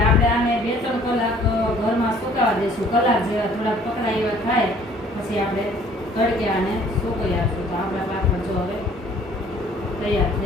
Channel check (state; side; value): normal; both; correlation 0.56